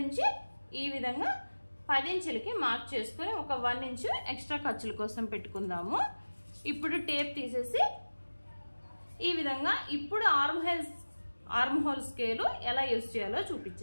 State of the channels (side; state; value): both; inverted; correlation -1.00